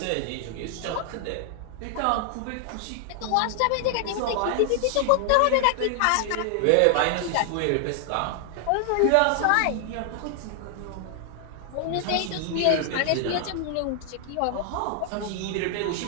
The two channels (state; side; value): different; both; correlation 0.00